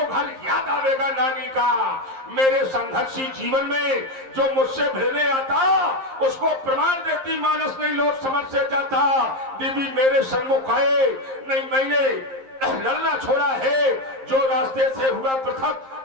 घर याद आवेगा नानी का। मेरे संघर्षी जीवन में जो मुझसे भिड़ने आता उसको प्रमाण देती मानस नहीं लोट समझ से जाता। देवी मेरे सन्मुख आए नहीं, मैंने लड़ना छोड़ा है। जो रास्ते से हुआ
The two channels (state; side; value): late; left; 11 ms